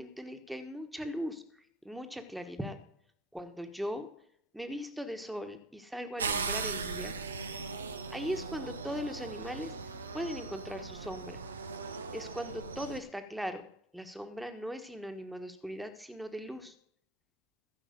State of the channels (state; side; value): normal; both; correlation 0.33